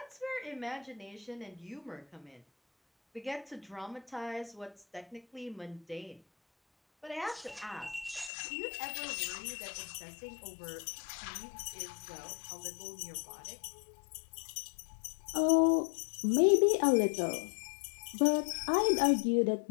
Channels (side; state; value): right; drops out; at 8.3 s